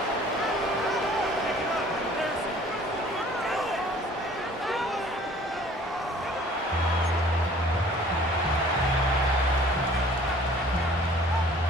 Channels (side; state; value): both; normal; correlation 0.52